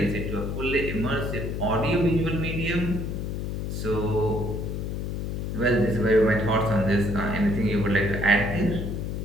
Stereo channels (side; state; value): left; noise; hum, 3 dB below the sound